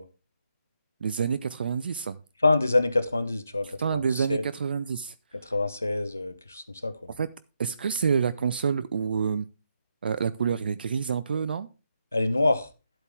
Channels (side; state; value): both; inverted; correlation -0.82